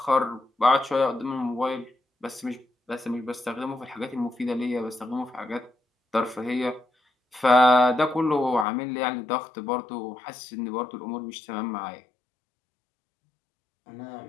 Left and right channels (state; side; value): drops out; right; at 8.7 s